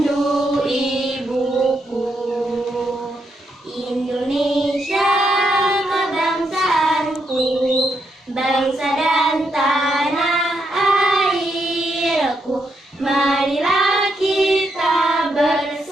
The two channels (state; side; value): normal; both; correlation 0.80